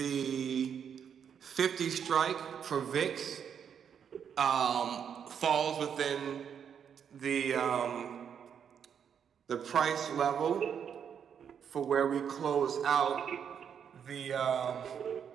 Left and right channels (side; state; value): left; quieter; 7.8 dB